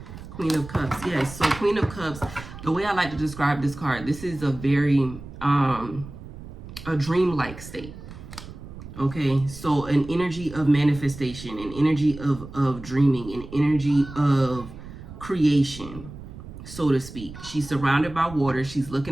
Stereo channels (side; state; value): right; noise; rumble, 14 dB below the sound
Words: Queen of Cups. Yes, so Queen of Cups, the way I like to describe this card, this is a very, a dreamlike state. Okay, so an energy of manifestation, an energy of dreaming, an energy of creation, so to speak. She's surrounded by water. She's